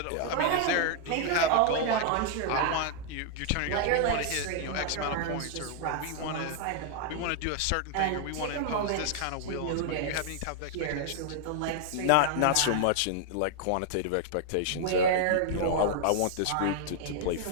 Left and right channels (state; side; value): different; both; correlation 0.00